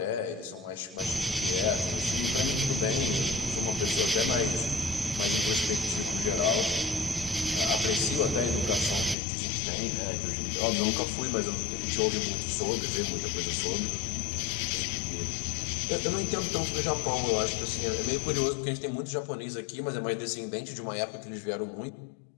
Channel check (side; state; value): right; drops out; at 9.2 s